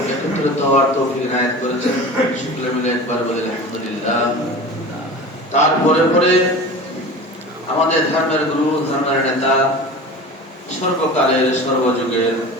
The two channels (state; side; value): normal; both; correlation 0.34